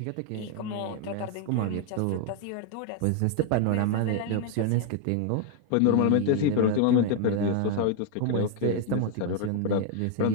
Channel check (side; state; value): both; different; correlation 0.00